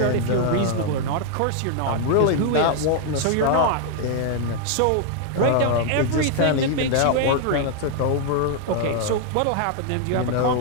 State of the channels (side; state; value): both; different; correlation 0.00